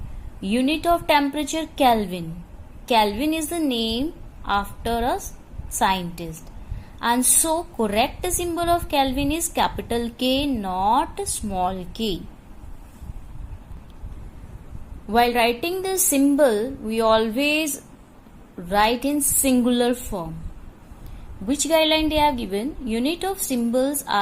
Unit of temperature, Kelvin. Kelvin is the name after a scientist. And so correct symbol of Kelvin is capital K, not small k. While writing the symbol, we always write in singular form. Which guideline they have given? Unit of symbols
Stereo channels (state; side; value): identical; both; correlation 1.00